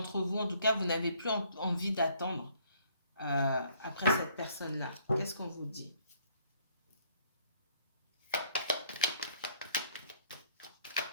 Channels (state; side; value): inverted; both; correlation -0.63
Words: vous, en tout cas, vous n'avez plus envie d'attendre après cette personne-là. Qu'est-ce qu'on vous dit?